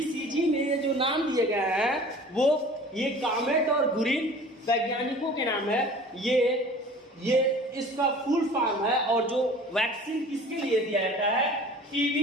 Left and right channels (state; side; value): normal; both; correlation 0.45